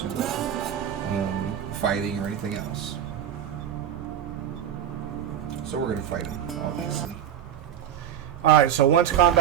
fighting or anything else. So we're going to fight him, obviously. Alright, so once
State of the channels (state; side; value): quieter; left; 9.9 dB